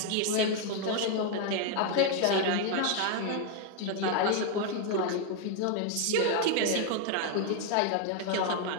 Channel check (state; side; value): different; both; correlation 0.01